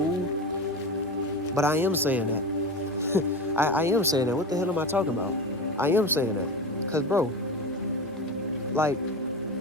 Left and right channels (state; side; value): normal; both; correlation 0.25